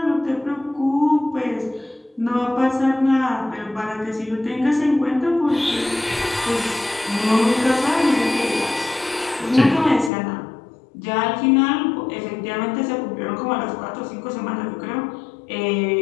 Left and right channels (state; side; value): drops out; right; at 10.1 s